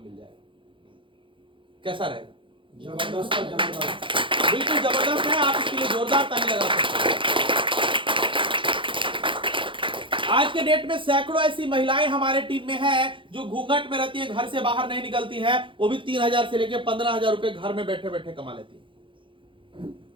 मिल जाएगा। कैसा रहेगा? जबरदस्त है, जबरदस्त। बिल्कुल जबरदस्त है। आप इसके लिए जोरदार ताली लगा सकते हैं। आज के डेट में सैकड़ों ऐसी महिलाएं हमारे टीम में हैं जो घूंघट में रहती हैं, घर से बाहर नहीं निकलती हैं। वो भी 3000 से लेकर 15,000 रुपए घर में बैठे बैठे कमा लेती हैं।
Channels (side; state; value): left; late; 0.25 ms